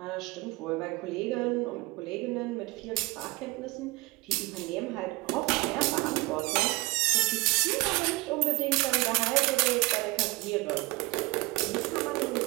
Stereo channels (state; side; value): quieter; left; 23.0 dB